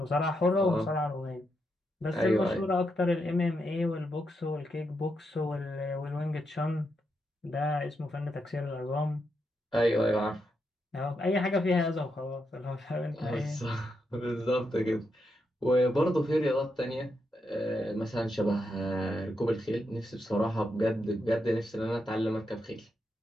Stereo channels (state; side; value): normal; both; correlation 0.83